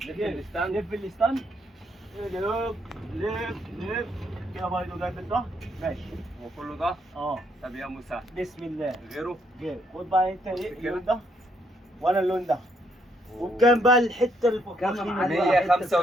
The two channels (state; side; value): normal; both; correlation 0.72